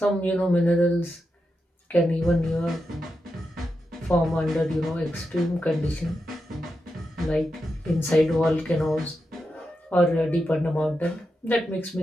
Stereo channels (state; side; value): normal; both; correlation 0.88